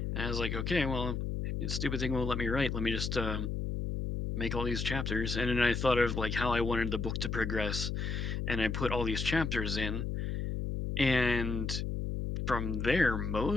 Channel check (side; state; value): left; noise; hum, 2 dB below the sound